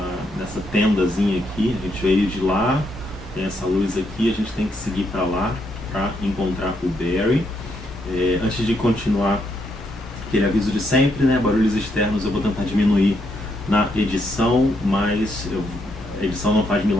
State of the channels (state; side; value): normal; both; correlation 0.77